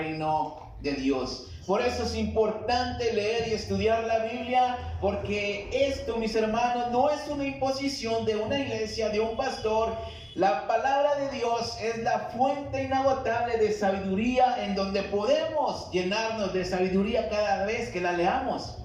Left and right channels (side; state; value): both; identical; correlation 1.00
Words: de Dios. Por eso es importante leer y estudiar la Biblia, porque esto, mis hermanos, no es una imposición de una iglesia, de un pastor. La palabra de Dios es la fuente inagotable de sabiduría, en donde podemos llenarnos de sabiduría cada vez que la leamos.